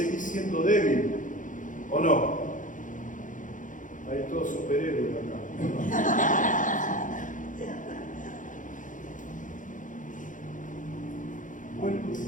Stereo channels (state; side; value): late; right; 0.38 ms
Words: siendo débil, ¿o no? Hay todos superhéroes acá.